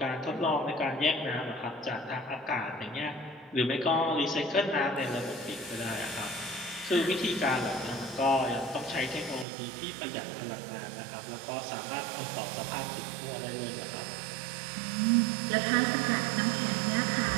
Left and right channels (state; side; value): drops out; left; at 9.5 s